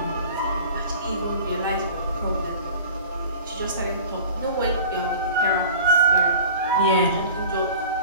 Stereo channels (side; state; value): both; inverted; correlation -0.41